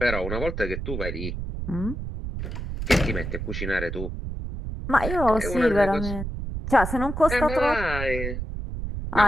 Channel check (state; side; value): noise; right; rumble, 5 dB below the sound